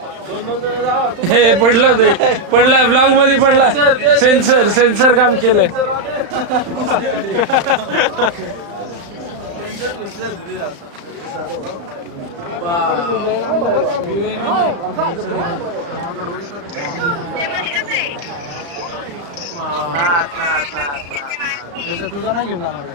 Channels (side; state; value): left; late; 35 ms